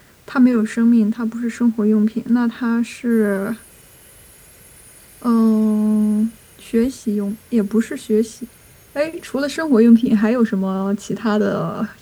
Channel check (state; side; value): identical; both; correlation 1.00